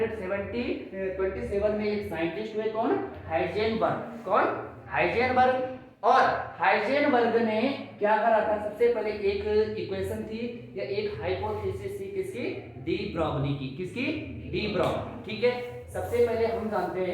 में एक साइंटिस्ट हुए, कौन? हाइजेनबर्ग। कौन? हाइजेनबर्ग। और हाइजेनबर्ग ने क्या करा था? सबसे पहले एक इक्वेशन थी या एक हाइपोथेसिस थी, किसकी? डी ब्रॉगली की। किसकी? De Broglie. ठीक है, सबसे पहले हम जानते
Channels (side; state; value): both; identical; correlation 1.00